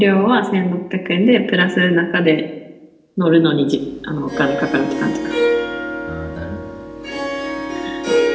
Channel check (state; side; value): identical; both; correlation 1.00